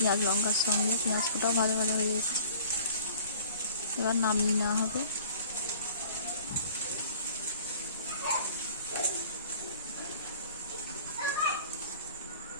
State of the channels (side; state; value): both; inverted; correlation -0.48